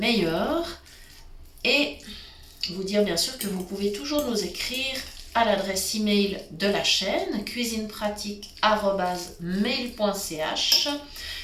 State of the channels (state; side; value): identical; both; correlation 1.00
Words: Et vous dire bien sûr que vous pouvez toujours nous écrire à l'adresse email de la chaîne cuisinepratique@mail.ch.